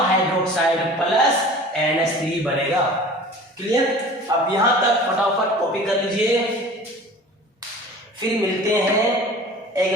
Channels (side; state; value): both; normal; correlation 0.42